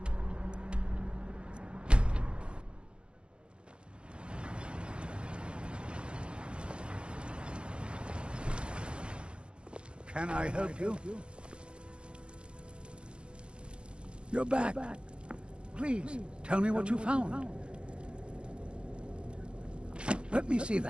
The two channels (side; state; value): left; late; 0.056 ms